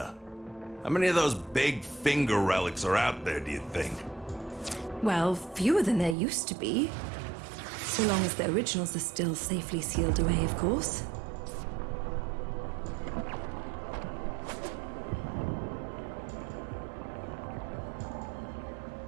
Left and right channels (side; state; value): left; drops out; at 6.2 s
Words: How many of those big finger relics are out there, do you think? Well, fewer than there used to be. So long as the originals are still safely sealed away, of course.